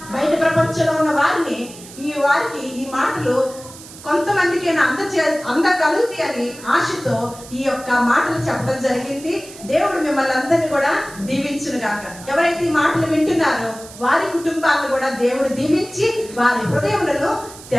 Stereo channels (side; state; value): right; noise; hiss, 17 dB below the sound